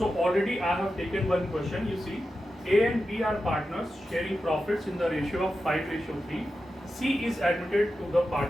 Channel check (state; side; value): normal; both; correlation 0.91